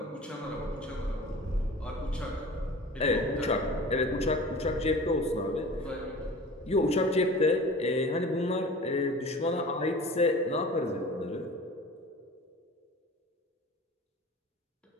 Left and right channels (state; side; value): normal; both; correlation 0.40